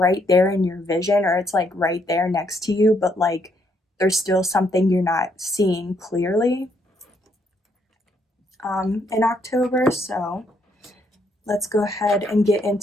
there in your vision, or it's like right there next to you, but like there's still something you're not seeing clearly in October. So let's go ahead and get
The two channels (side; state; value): both; normal; correlation 0.73